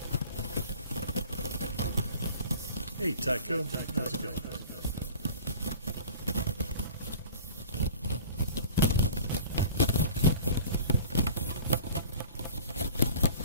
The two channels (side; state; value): both; inverted; correlation -0.41